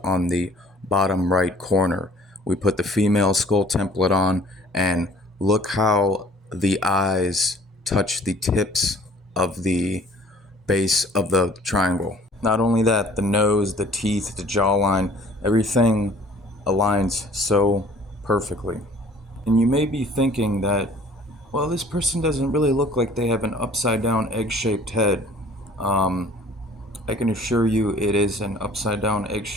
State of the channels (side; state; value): both; normal; correlation 0.52